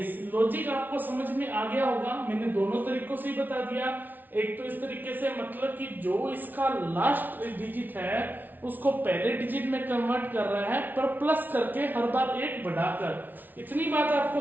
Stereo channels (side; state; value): left; late; 0.085 ms